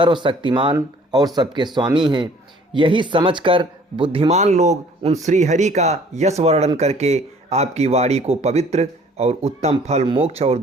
और सबके स्वामी हैं। यही समझकर बुद्धिमान लोग उन श्री हरि का यश वर्णन करके आपकी वाणी को पवित्र और उत्तम फल, मोक्ष और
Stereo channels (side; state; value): both; normal; correlation 0.55